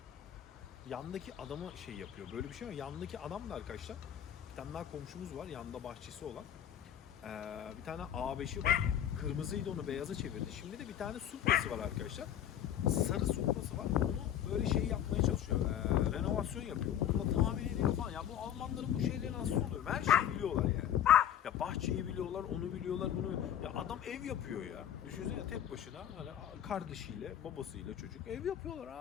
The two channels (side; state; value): right; quieter; 10.3 dB